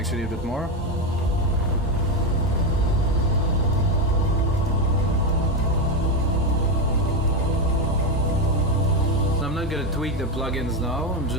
a bit more. So I'm not gonna tweak the plugins now. I'm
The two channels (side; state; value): both; normal; correlation 0.10